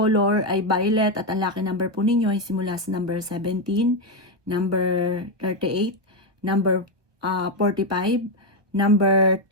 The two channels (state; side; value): late; left; 1.4 ms